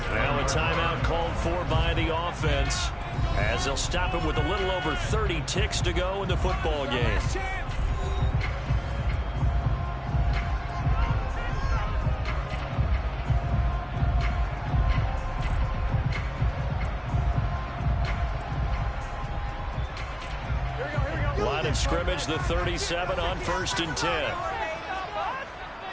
Now a timeout called for by the offense as they'll stop it with a little over 30 ticks to go in the football game. Line of scrimmage, the 37 on 1st and 10.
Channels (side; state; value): both; identical; correlation 1.00